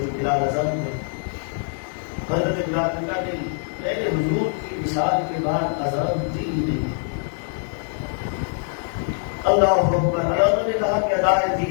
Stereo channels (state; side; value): silent; right; 63 dB below the other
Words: بلال اذان میں. حضرت بلال نے کہا نہیں میں نے حضور کی وصال کے بعد اذان دی نہیں. اللہ اکبر. علامہ نے کہا کہ ادائے